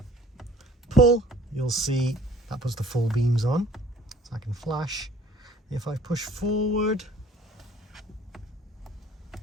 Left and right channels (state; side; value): normal; both; correlation 0.53